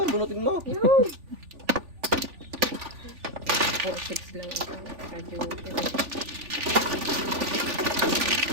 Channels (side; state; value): left; late; 3.4 ms